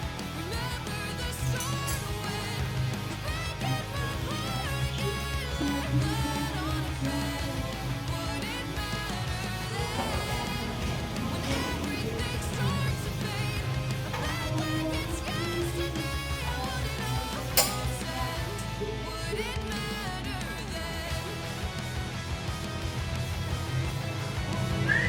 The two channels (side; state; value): both; identical; correlation 1.00